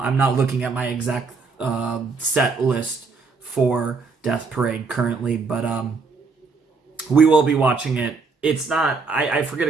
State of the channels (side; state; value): left; quieter; 4.5 dB